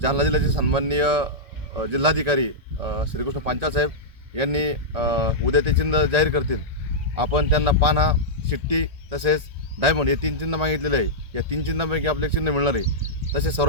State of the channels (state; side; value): late; left; 1.8 ms